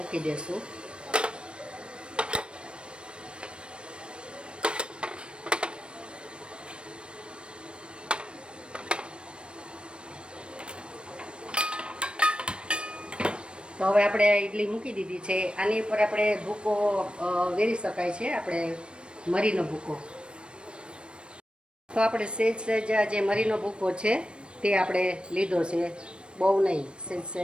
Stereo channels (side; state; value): left; late; 0.057 ms